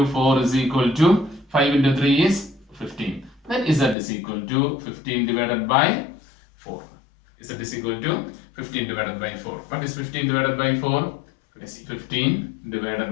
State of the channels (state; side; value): drops out; right; at 4.0 s